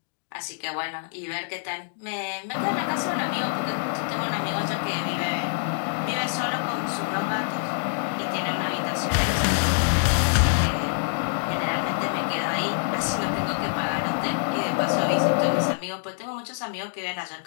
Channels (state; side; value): silent; right; digital silence